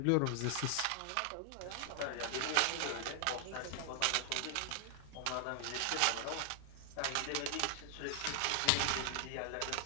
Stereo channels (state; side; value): different; both; correlation 0.00